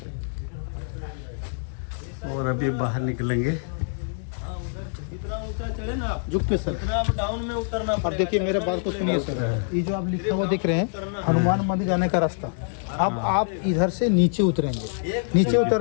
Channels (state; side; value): silent; right; digital silence